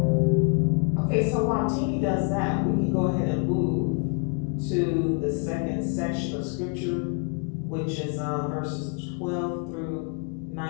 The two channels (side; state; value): right; quieter; 36.0 dB